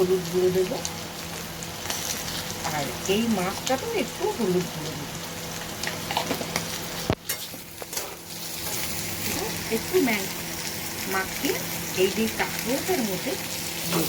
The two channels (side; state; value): both; identical; correlation 1.00